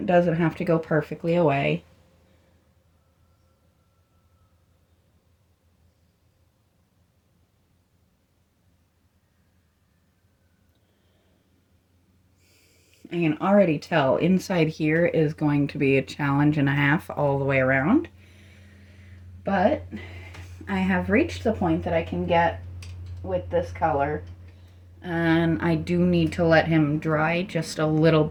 doesn't have to go perfectly away. I can already tell inside here is going to be a challenge and a half all the way around. But I have reached the point that I can get with this color, and I do need to let him dry just a little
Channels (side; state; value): both; identical; correlation 1.00